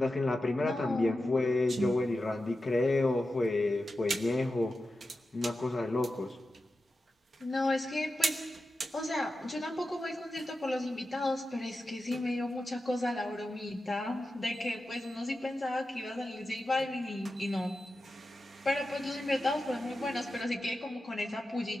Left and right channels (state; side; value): normal; both; correlation 0.91